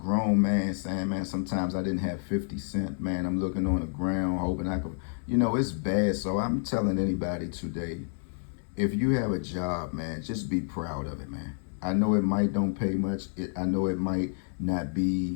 man saying, man, sometimes I didn't have 50 cents, man. I'm looking on the ground, hoping I could, it's bad. So I'm telling anybody today, if you have a job, man, just be proud of it, man. I know it might don't pay much. I know it might not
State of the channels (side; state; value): right; silent; 58 dB below the other